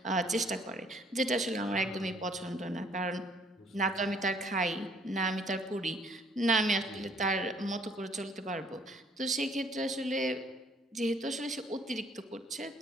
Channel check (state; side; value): normal; both; correlation 0.62